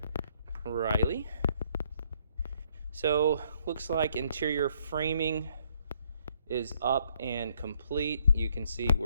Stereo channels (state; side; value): inverted; both; correlation -0.68